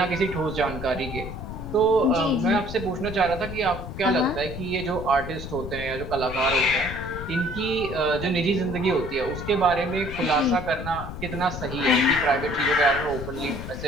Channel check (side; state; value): left; noise; rumble, 9 dB below the sound